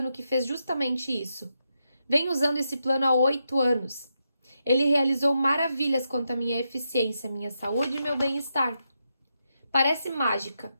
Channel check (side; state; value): both; inverted; correlation -0.84